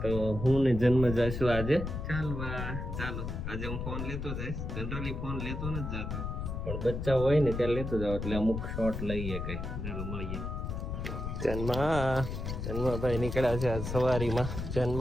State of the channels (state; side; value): noise; left; rumble, 5 dB below the sound